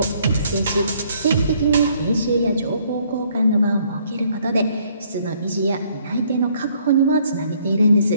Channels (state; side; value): inverted; both; correlation -0.65